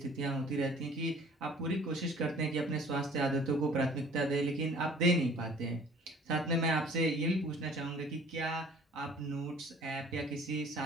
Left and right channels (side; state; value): both; normal; correlation 0.51